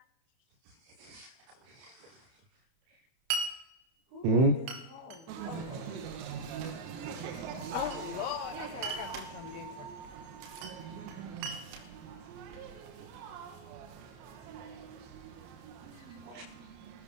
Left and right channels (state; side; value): late; left; 31 ms